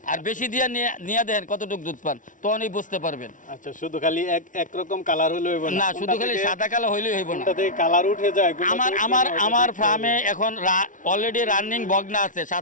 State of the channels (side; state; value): right; late; 0.38 ms